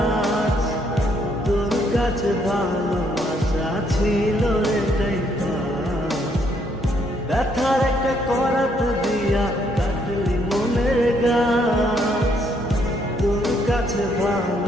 তোর কাছে ভালোবাসা ছিল রে তাই পাস। ব্যথার একটা করাত দিয়া কাটলি মনের গাছ, তোর কাছে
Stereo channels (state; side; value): normal; both; correlation 0.71